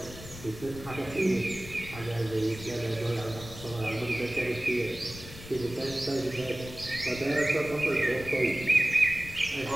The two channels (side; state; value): left; noise; rumble, 14 dB below the sound